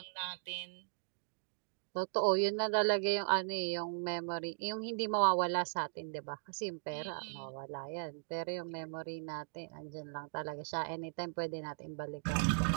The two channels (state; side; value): silent; left; digital silence